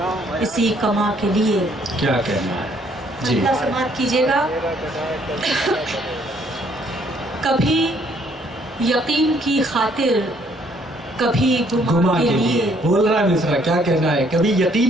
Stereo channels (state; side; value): normal; both; correlation 0.65